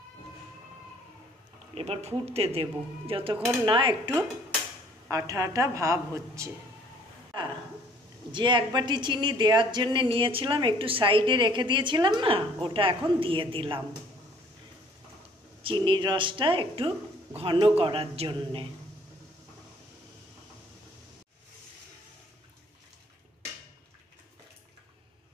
এবার ফুটতে দেব যতক্ষণ না একটু আঠা আঠা ভাব হচ্ছে। যে 1 বাটি চিনি দেওয়ার জন্য নিয়েছিলাম, একটু সাইডে রেখে দিয়েছিলাম না, ওটা এখন দিয়ে দিলাম চিনির রসটা একটু ঘন করার জন্যে।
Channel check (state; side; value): normal; both; correlation 0.58